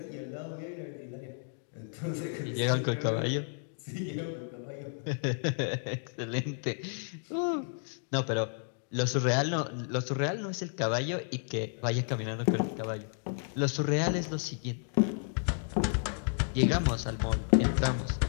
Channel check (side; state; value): right; silent; digital silence